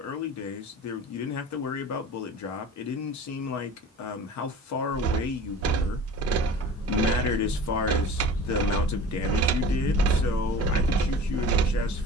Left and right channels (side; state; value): both; normal; correlation 0.40